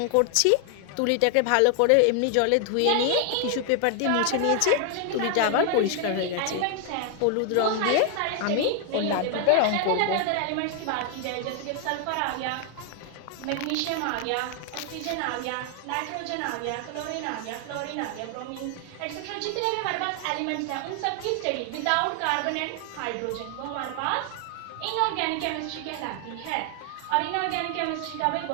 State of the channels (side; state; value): both; different; correlation 0.00